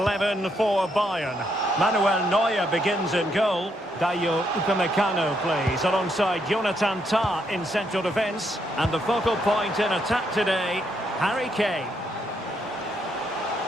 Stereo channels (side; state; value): both; normal; correlation 0.76